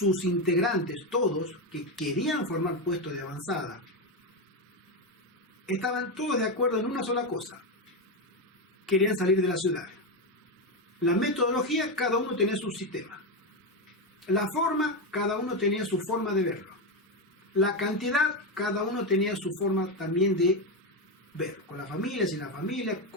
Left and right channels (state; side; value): normal; both; correlation 0.10